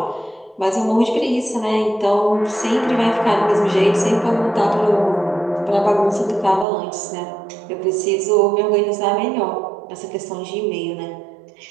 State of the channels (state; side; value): drops out; left; at 6.7 s